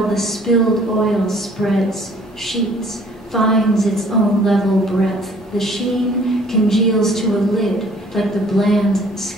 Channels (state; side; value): normal; both; correlation 0.56